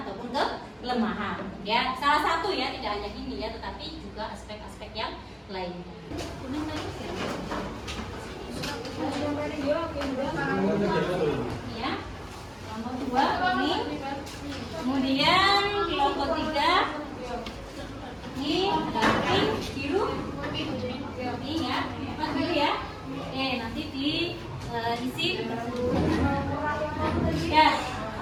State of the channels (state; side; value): identical; both; correlation 1.00